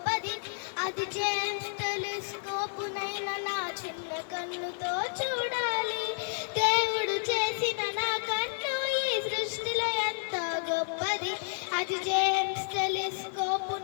అది జేమ్స్ టెలిస్కోపునైనా నా చిన్న కన్నుతో చూడాలి. దేవుడు చేసిన నా కన్ను ఈ సృష్టిలో ఎంతో గొప్పది. అది జేమ్స్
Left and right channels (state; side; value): silent; right; 57 dB below the other